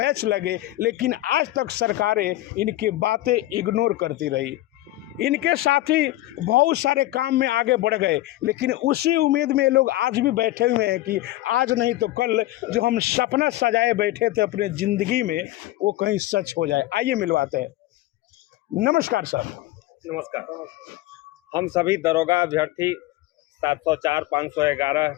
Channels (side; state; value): right; quieter; 16.5 dB